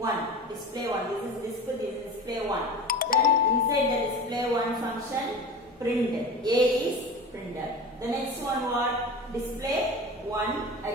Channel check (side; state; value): both; normal; correlation 0.33